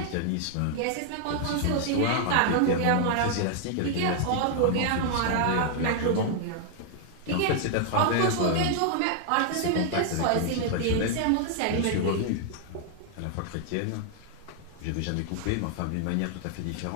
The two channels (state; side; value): different; both; correlation 0.00